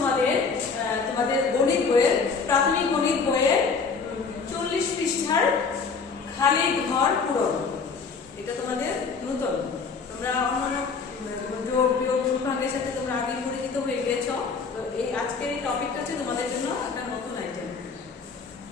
গণিত বইয়ের, প্রাথমিক গণিত বইয়ের 40 পৃষ্ঠার খালি ঘর পূরণ। এটা তোমাদের নতুন, তোমরা অন্যান্য যোগ বিয়োগ গুণভাগের সাথে তোমরা আগে পরিচিত হয়ে গিয়েছো। তো এই আজকের এই টপিকটা হচ্ছে তোমাদের জন্য একটা নতুন আইটেম।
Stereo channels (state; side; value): quieter; right; 5.1 dB